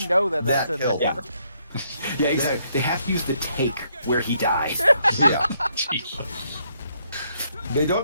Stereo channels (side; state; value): both; inverted; correlation -0.73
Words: know that's in killed there. him. Yeah, exactly. They have to use the take where he died. Yeah. Jesus. They don't